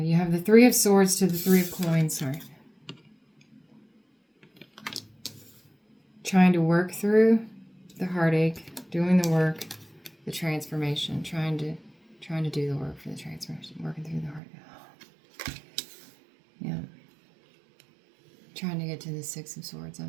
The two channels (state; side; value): drops out; left; at 14.4 s